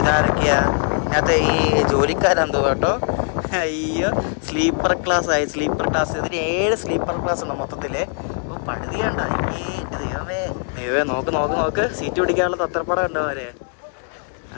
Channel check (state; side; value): silent; right; 58 dB below the other